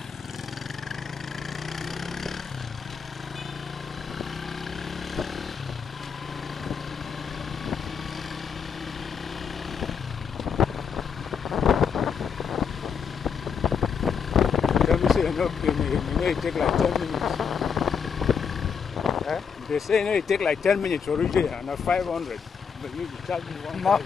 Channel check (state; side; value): quieter; right; 6.6 dB